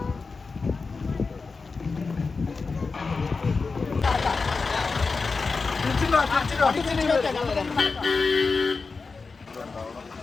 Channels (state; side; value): quieter; right; 4.4 dB